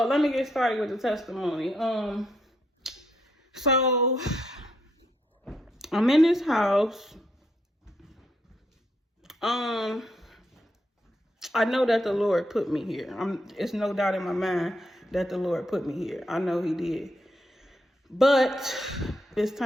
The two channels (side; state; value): both; normal; correlation 0.78